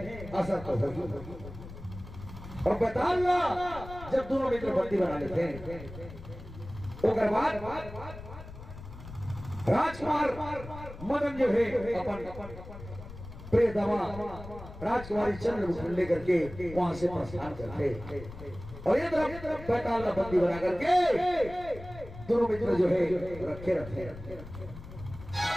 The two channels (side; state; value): left; noise; rumble, 14 dB below the sound